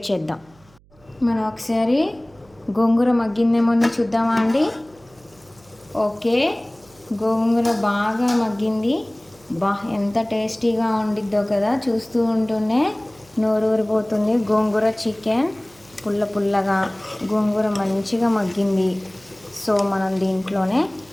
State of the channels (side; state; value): right; noise; hum, 29 dB below the sound